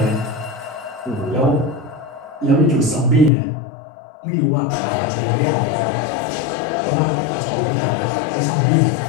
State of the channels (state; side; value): drops out; right; at 3.3 s